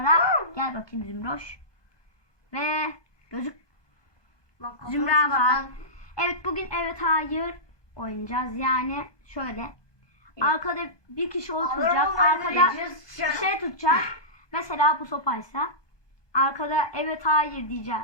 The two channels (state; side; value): late; right; 1.2 ms